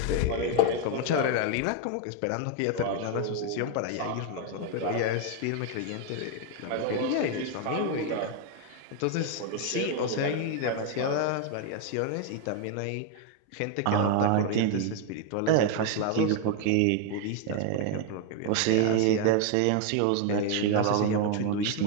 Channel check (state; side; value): different; both; correlation 0.00